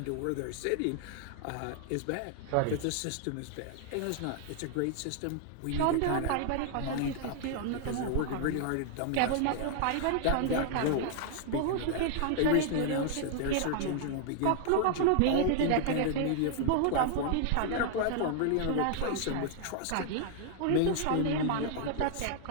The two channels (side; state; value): both; different; correlation 0.00